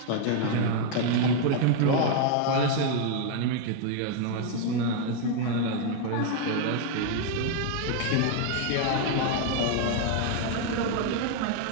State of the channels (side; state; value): both; different; correlation 0.00